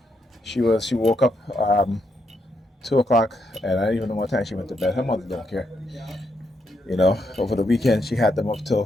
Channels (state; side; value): normal; both; correlation 0.79